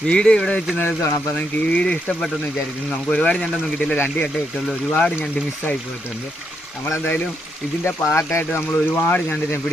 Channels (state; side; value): normal; both; correlation 0.79